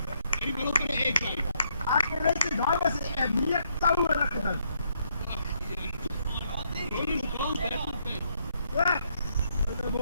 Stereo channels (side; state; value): both; inverted; correlation -0.74